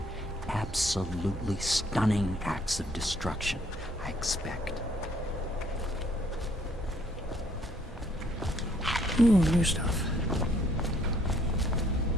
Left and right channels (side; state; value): both; normal; correlation 0.65